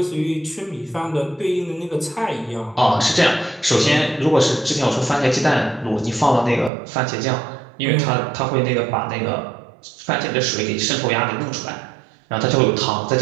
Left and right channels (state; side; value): drops out; left; at 6.7 s